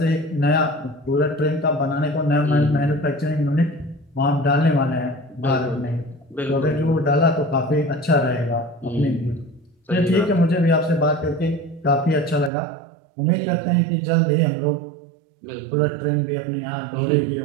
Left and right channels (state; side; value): drops out; left; at 12.5 s